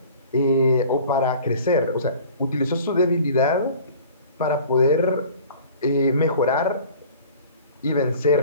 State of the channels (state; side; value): inverted; both; correlation -0.46